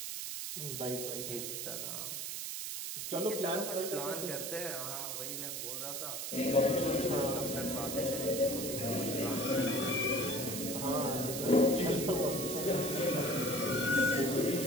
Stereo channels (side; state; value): right; noise; hiss, 4 dB below the sound